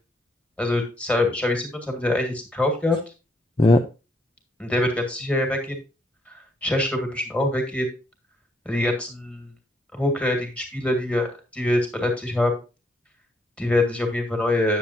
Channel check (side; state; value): both; normal; correlation 0.72